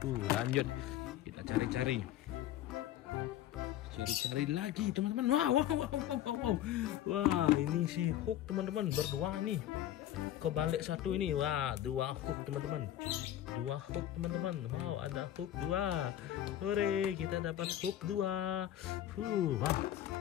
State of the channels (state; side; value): quieter; right; 12.3 dB